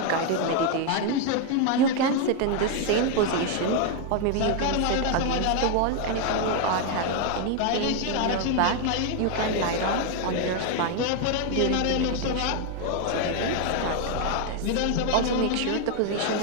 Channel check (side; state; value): both; different; correlation 0.01